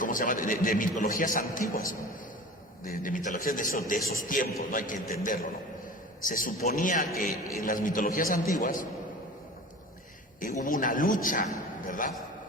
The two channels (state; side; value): normal; both; correlation 0.37